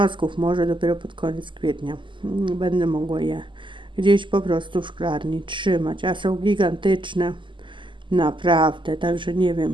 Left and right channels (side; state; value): left; late; 0.24 ms